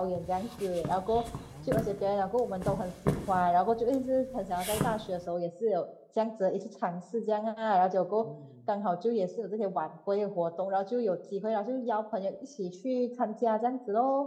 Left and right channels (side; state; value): both; identical; correlation 1.00